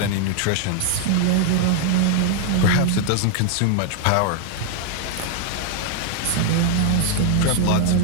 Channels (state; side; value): different; both; correlation 0.00